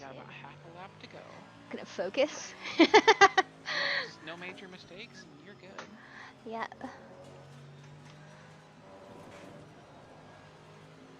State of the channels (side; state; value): both; identical; correlation 1.00